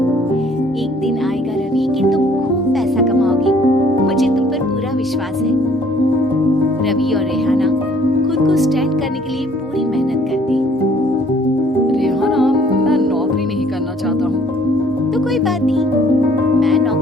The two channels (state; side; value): normal; both; correlation 0.59